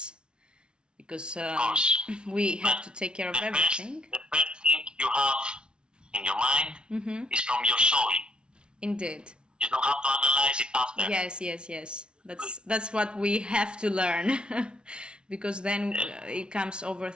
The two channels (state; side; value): late; left; 0.056 ms